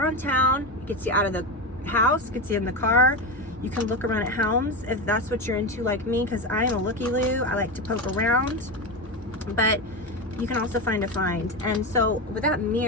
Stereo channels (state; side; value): normal; both; correlation 0.18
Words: town. It gets you out of the house, gets you in the car. You can look around at homes if that's what you're into, like me, because I am a looky-loo. I like to poke around, but you can also find a find. And so with that